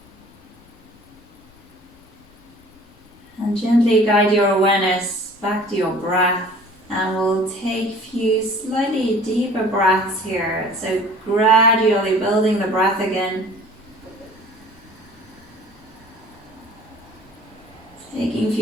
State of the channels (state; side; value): normal; both; correlation 0.48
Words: And gently guide your awareness back to your breath, and we'll take a few slightly deeper breaths here. So gradually building the breath again. Taking a